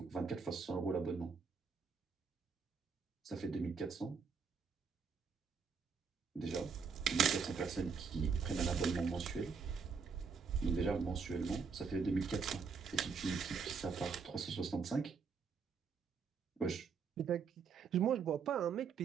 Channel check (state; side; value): quieter; left; 5.7 dB